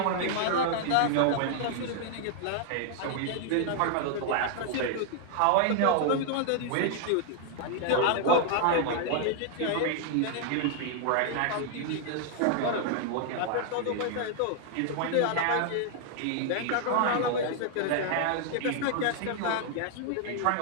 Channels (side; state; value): both; different; correlation 0.00